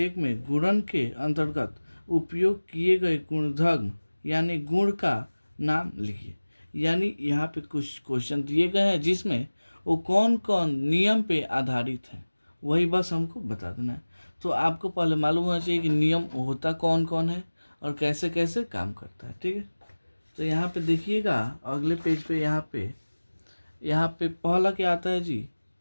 में गुणन के अंतर्गत उपयोग किए गए गुणधर्म यानी गुण का नाम लिखिए। यानी यहाँ पे कुछ क्वेश्चन दिए गए हैं जिसमें वो कौन कौन नियम पे आधारित है, वही बस हमको बता देना है। तो आपको पहले मालूम होना चाहिए कि नियम होता कौन कौन है और कैसे कैसे काम करता है। ठीक है, तो यहाँ पे देखिएगा अगले पेज पे यहाँ पे पहला क्या आता है जी,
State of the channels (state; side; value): inverted; both; correlation -1.00